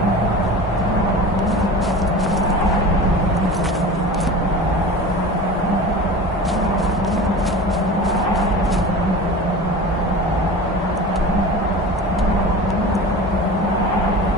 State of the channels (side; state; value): both; normal; correlation 0.34